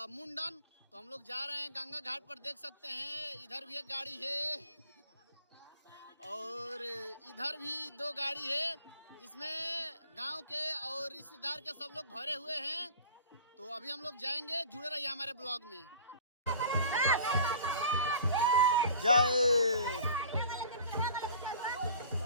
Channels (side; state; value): both; inverted; correlation -0.45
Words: मुंडन। तो हम लोग जा रहे हैं गंगा घाट पर। देख सकते हैं इधर भी एक गाड़ी है और इधर भी 2 गाड़ी है, जिसमें गांव के और रिश्तेदार के सब लोग भरे हुए हैं। तो अभी हम लोग जाएंगे, जुड़े रहिए हमारे ब्लॉग में। जय।